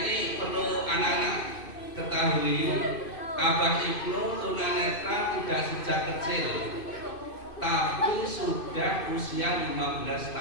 perlu anak-anak ketahui, Abah Ibnu tunanetra tidak sejak kecil, tapi sudah usia 15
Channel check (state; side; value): late; right; 2.6 ms